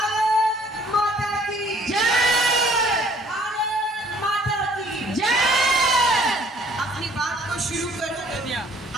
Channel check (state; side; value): normal; both; correlation 0.59